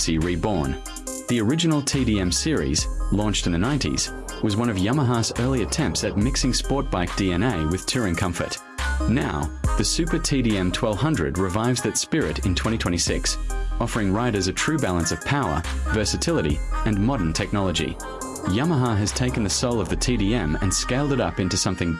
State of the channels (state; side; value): identical; both; correlation 1.00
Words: reborn. The original TDM series, launched in the 90s, was one of Yamaha's early attempts at mixing sport bike DNA with touring comfort. Now, the Super TDM 1200 revives that spirit in 2026, offering riders a true balance of power, versatility, and modern technology. Yamaha has taken the soul of the TDM and scaled it up into something